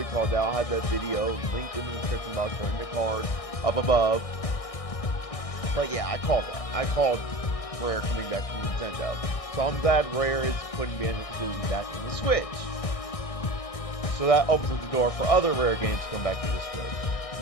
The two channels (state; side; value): late; right; 1.6 ms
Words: call that. I'll have that video linked in the description box or in the card up above. But yeah, I called that. I called Rare coming back from Nintendo. So I'm glad Rare is putting Banjo-Kazooie back in the Switch. So that opens up the door for other Rare games to come back to the Switch.